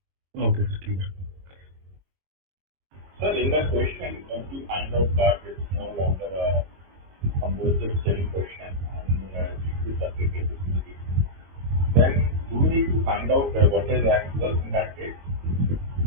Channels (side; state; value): left; late; 22 ms